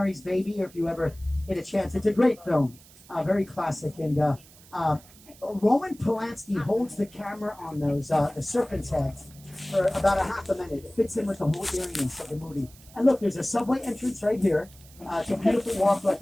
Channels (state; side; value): noise; right; hiss, 23 dB below the sound